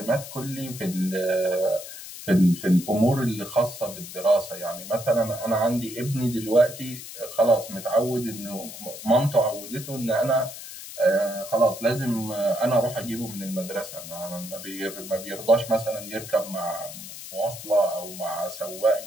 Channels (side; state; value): left; noise; hiss, 12 dB below the sound